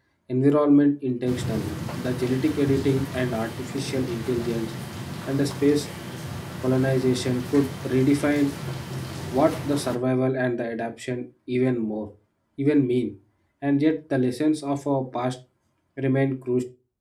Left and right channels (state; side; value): identical; both; correlation 1.00